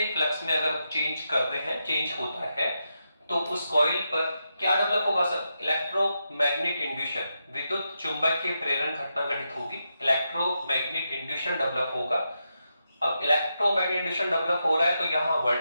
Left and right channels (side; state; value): both; inverted; correlation -0.86